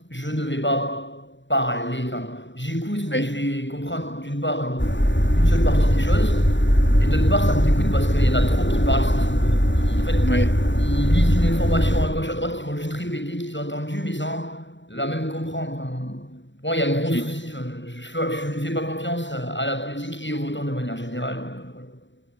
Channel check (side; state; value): right; late; 0.54 ms